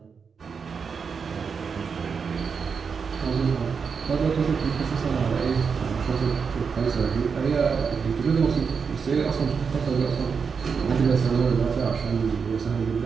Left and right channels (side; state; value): left; quieter; 5.9 dB